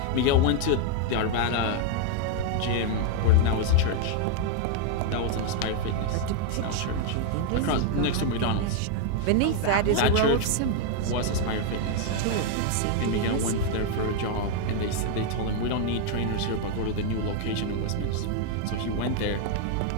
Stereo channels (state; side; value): different; both; correlation 0.00